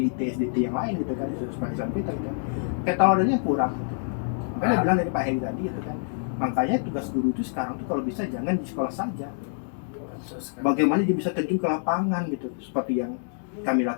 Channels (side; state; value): right; silent; digital silence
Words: SDIT yang lain gitu kan, di sekolah Islam kita gitu. Keteladannya kurang gitu. Makanya bilang dari Pak Heri tadi gitu kan. Makanya tugas guru itu sekarang tuh kalau bisa jangan di sekolah saja. Bagaimana dia bisa terjun ke lapangan gitu, seperti yang kami